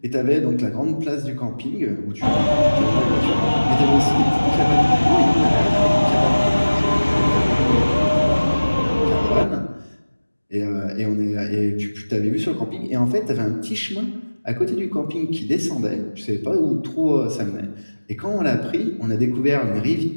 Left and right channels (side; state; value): both; inverted; correlation -1.00